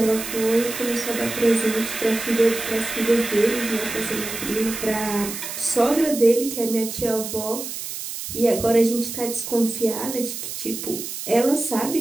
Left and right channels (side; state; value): right; noise; hiss, 7 dB below the sound